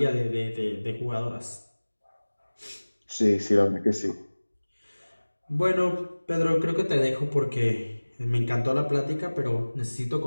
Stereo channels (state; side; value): inverted; both; correlation -1.00